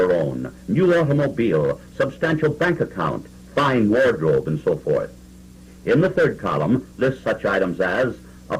own, new automobile, substantial bank account, fine wardrobe, and so forth. In the third column, list such items as a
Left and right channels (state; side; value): identical; both; correlation 1.00